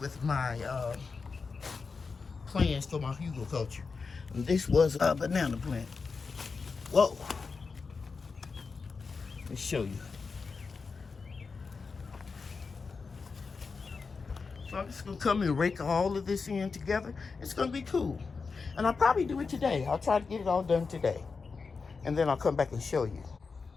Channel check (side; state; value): right; quieter; 4.8 dB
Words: with my plans for my hugelkultur. And this was a banana plant. Whoa. Let's show you. So I'm just going to come and rake all of this in together. It's going to be cool. And I'll probably do it today. I'll try to get it all done today. And then I'll come back and show you.